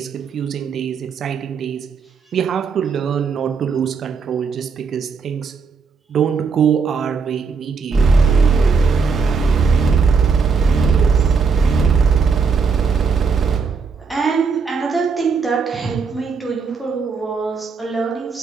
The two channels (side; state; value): left; quieter; 5.2 dB